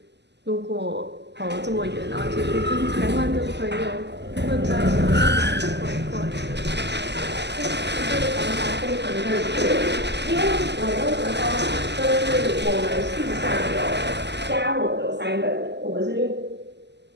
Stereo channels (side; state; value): left; late; 0.50 ms